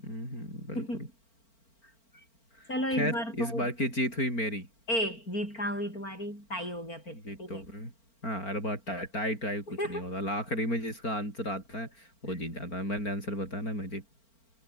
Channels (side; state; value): right; late; 4.4 ms